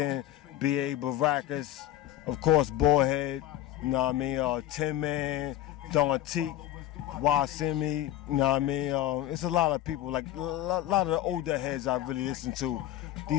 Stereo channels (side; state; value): right; quieter; 13.3 dB